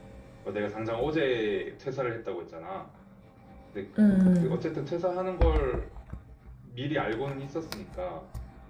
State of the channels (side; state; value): both; identical; correlation 1.00